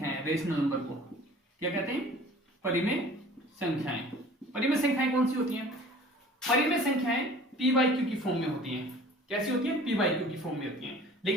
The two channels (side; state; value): both; normal; correlation 0.46